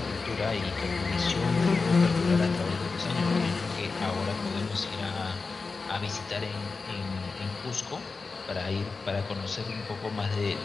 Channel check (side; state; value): right; quieter; 4.3 dB